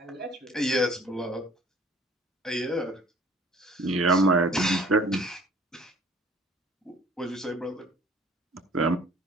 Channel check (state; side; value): normal; both; correlation 0.53